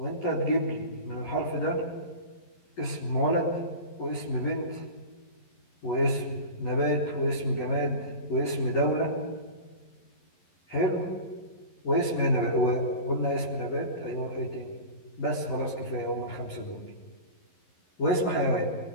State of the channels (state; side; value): late; right; 11 ms